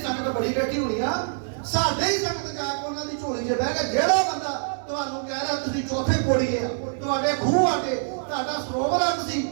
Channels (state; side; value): silent; left; 62 dB below the other